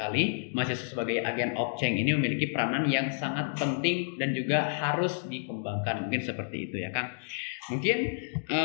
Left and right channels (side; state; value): right; silent; digital silence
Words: Mahasiswa sebagai agen of change ini memiliki peranan yang sangat penting dan juga harus dikembangkan. Mungkin seperti itu ya Kang. Mungkin